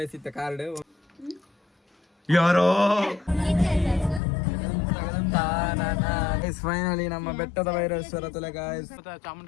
ಇತ್ತ ಕಾರ್ಡ್ ಯಾರೋ ಫೈನಲಿ ನಮ್ಮ ಬೆಟ್ಟದ ಭೈರವೇಶ್ವರ ತಲೆ ಗಾಯ್ಸ್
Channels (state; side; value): drops out; right; at 4.2 s